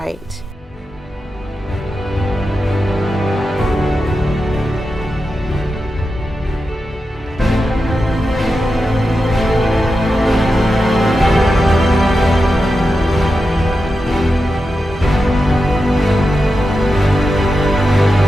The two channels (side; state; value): both; normal; correlation 0.90